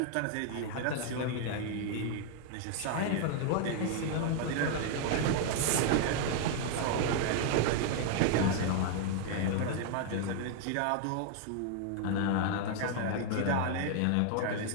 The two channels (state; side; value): different; both; correlation 0.00